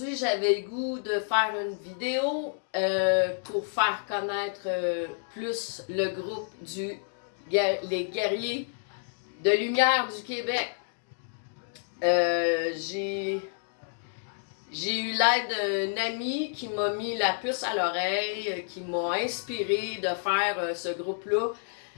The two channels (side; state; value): right; silent; digital silence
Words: j'avais le goût de faire une vidéo pour faire connaître plus le groupe les Guerriers de Lumière du Québec. J'ai eu l'aide d'un ami qui m'a mis la puce à l'oreille, qui m'a inspiré de faire ce groupe-là,